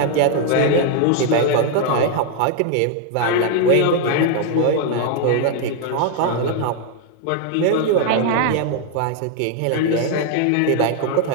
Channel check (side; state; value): both; different; correlation 0.00